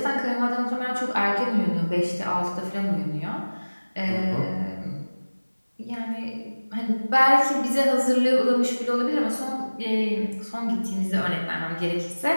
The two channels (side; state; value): both; inverted; correlation -1.00